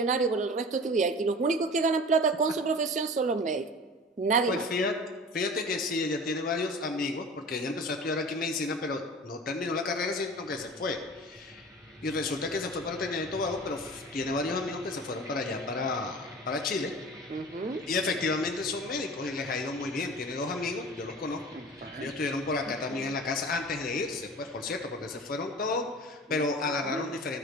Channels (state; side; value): normal; both; correlation 0.39